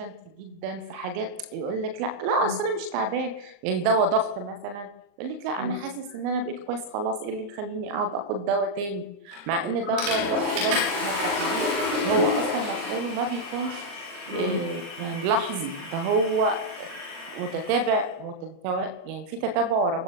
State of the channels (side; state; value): left; late; 39 ms